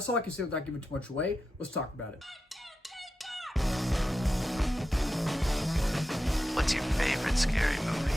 all I can say without giving too much away. Let's talk about it. What's your favorite scary movie?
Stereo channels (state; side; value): normal; both; correlation 0.90